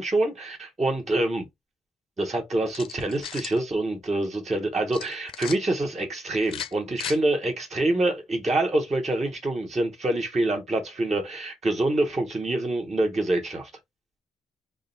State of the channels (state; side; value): normal; both; correlation 0.86